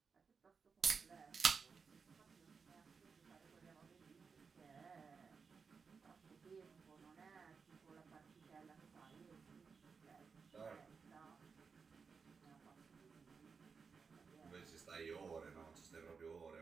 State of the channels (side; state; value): left; quieter; 5.4 dB